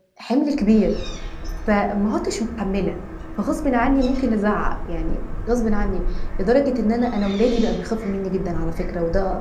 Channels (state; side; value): identical; both; correlation 1.00